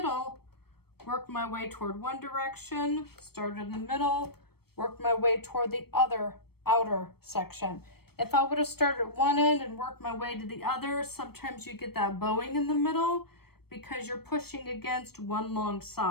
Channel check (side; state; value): right; late; 0.96 ms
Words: worked my way toward one direction, started in the middle, worked my way toward the other outer section. If I would have started at one end and worked my way to the other, sometimes you get that bowing in the middle because you're pushing against one long